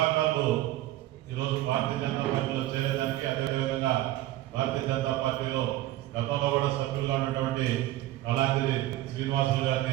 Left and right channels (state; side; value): quieter; left; 15.2 dB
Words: ఈరోజు భారతీయ జనతా పార్టీలో చేరేదానికి, అదేవిధంగా భారతీయ జనతా పార్టీలో గతంలో కూడా సభ్యులుగా ఉన్నటువంటి కళాంజలి శ్రీనివాసులు